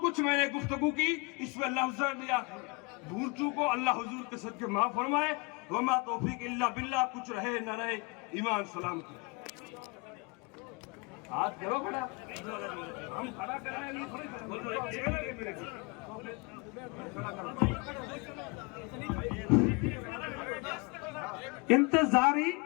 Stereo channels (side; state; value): right; quieter; 29.2 dB